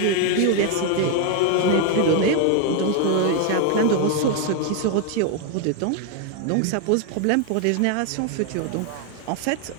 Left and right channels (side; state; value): both; different; correlation 0.01